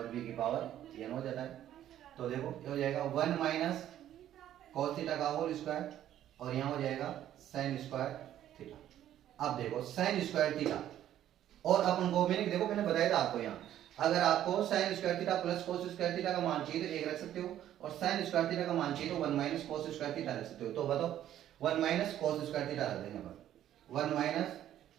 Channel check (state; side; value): quieter; left; 11.7 dB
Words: b की पावर n हो जाता है। तो देखो ये हो जाएगा 1 माइनस कॉस थीटा का होल स्क्वायर और यहाँ हो जाएगा साइन स्क्वायर थीटा। अब देखो साइन स्क्वायर थीटा और अपन को देखो मैंने बताया था आपको, यहाँ अगर आपको sign square theta plus cos square theta का मान चाहिए तो एक रख सकते हो, और साइन स्क्वायर थीटा का मान चाहिए तो 1 माइनस कोस स्क्वायर थीटा रख सकते हो। तो बताओ 1 माइनस कोस स्क्वायर थीटा रख देंगे पर 1 माइनस